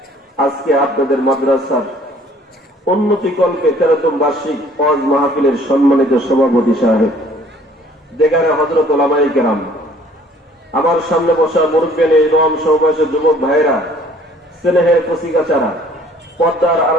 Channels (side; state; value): both; normal; correlation 0.56